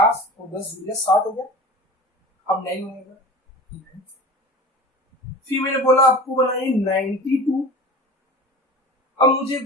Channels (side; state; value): both; normal; correlation 0.37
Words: और 10 गुना 60 हो गया। अब 9 बनेगा। फिर मैंने बोला आपको बनाइए 92। अब मुझे